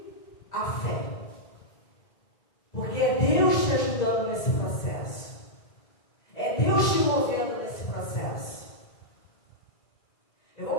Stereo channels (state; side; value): late; right; 2.0 ms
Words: a fé. Porque é Deus te ajudando nesse processo. É Deus te movendo nesse processo. Eu